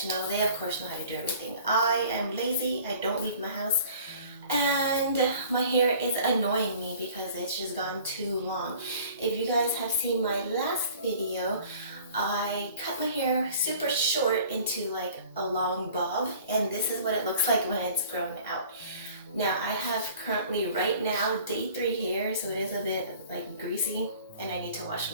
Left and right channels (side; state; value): both; inverted; correlation -0.49